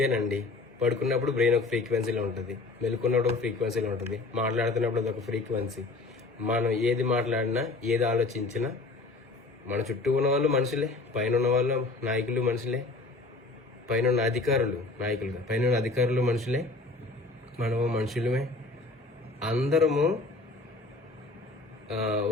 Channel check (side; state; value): right; quieter; 3.4 dB